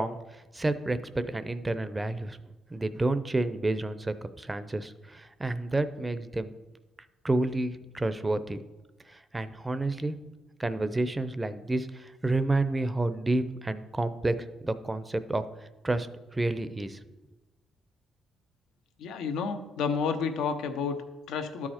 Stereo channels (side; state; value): both; normal; correlation 0.86